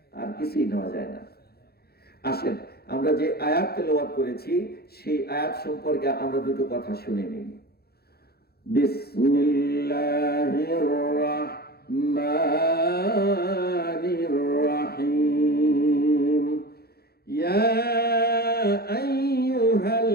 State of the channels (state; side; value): late; right; 0.46 ms